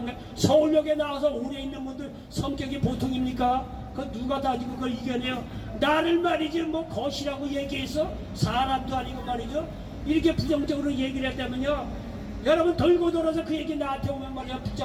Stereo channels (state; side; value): identical; both; correlation 1.00